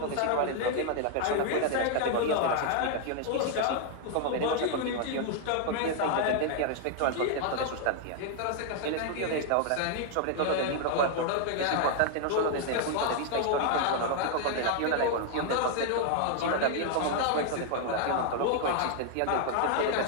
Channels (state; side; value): different; both; correlation 0.00